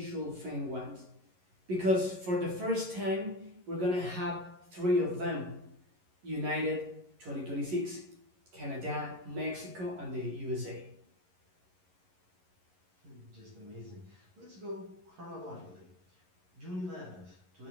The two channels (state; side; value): late; left; 11 ms